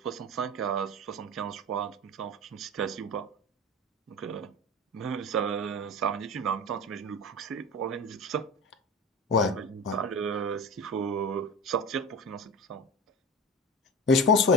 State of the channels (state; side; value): normal; both; correlation 0.30